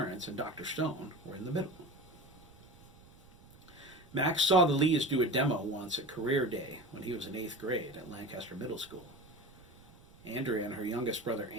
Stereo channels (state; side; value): noise; right; rumble, 24 dB below the sound